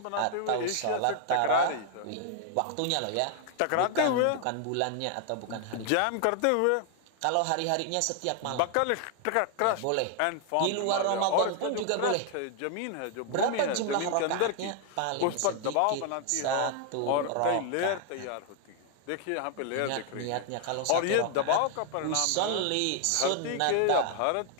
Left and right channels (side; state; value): both; different; correlation 0.00